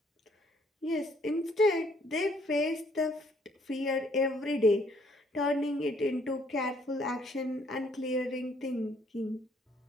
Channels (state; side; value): normal; both; correlation 0.65